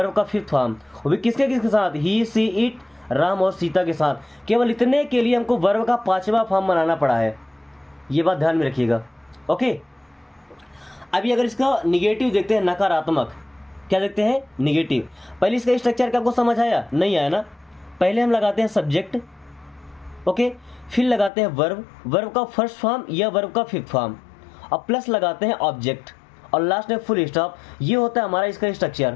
का फिफ्थ फॉर्म। वो भी किसके किसके साथ? ही, सी, इट, राम और सीता के साथ। केवल इतने के लिए हमको वर्ब का पांचवा फॉर्म बनाना पड़ा है। ये बात ध्यान में रखिएगा। ओके, अभी अगर इसका निगेटिव देखते हैं, नकारात्मक, क्या देखते हैं? निगेटिव। पहले इसका स्ट्रक्चर क्या आपको समझ आया? नहीं आया ना? पहले हम लगाते हैं सब्जेक्ट, ओके, फिर लगाते हैं वर्ब, वर्ब का फर्स्ट फॉर्म या वर्ब का फिफ्थ फॉर्म, और प्लस लगाते हैं ऑब्जेक्ट, और लास्ट में फुल स्टॉप। ये होता है हमारा इसका स्ट्रक्चर।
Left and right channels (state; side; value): drops out; right; at 21.3 s